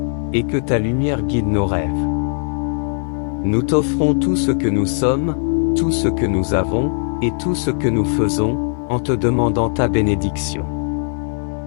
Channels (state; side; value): silent; right; digital silence